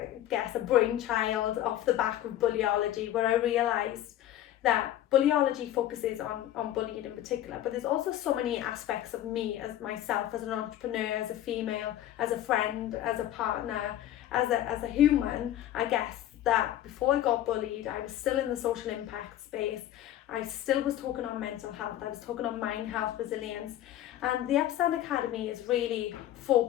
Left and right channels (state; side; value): quieter; right; 12.6 dB